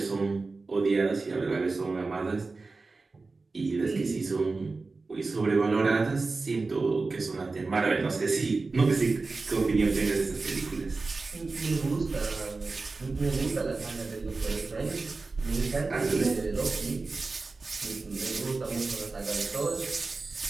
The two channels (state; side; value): quieter; left; 3.8 dB